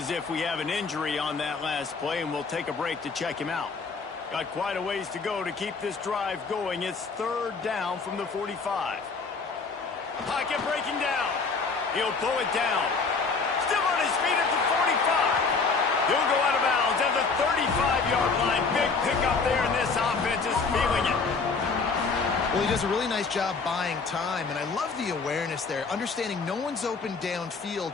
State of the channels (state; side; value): quieter; right; 4.6 dB